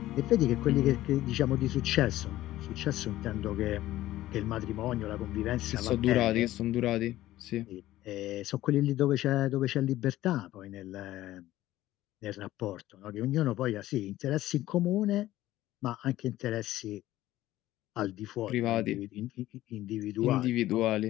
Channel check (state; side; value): quieter; right; 15.2 dB